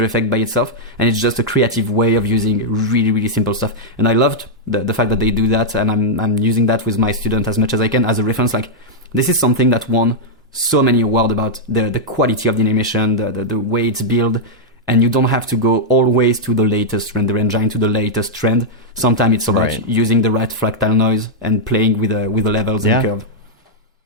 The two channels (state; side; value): normal; both; correlation -0.05